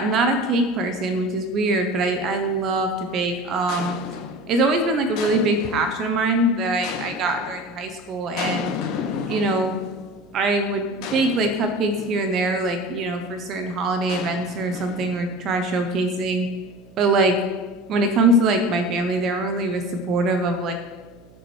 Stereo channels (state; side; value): noise; right; hum, 26 dB below the sound